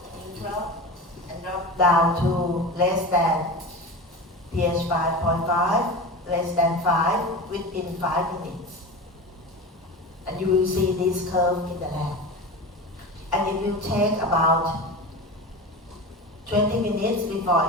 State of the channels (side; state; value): both; normal; correlation 0.29